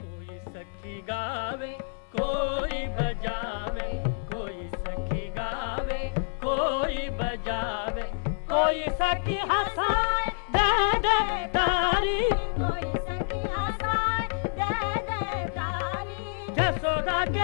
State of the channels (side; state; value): right; silent; 59 dB below the other